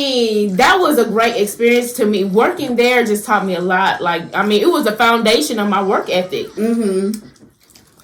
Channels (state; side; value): identical; both; correlation 1.00